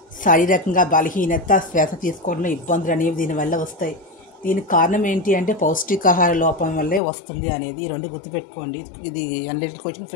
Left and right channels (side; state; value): right; drops out; at 7.0 s